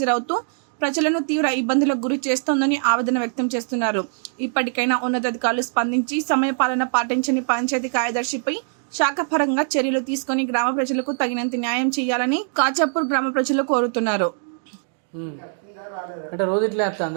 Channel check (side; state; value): left; silent; 64 dB below the other